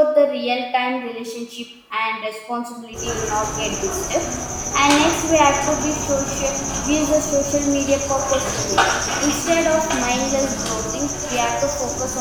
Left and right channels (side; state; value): both; identical; correlation 1.00